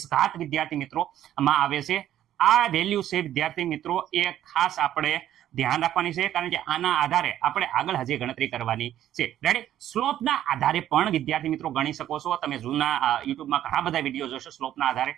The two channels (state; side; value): quieter; left; 11.9 dB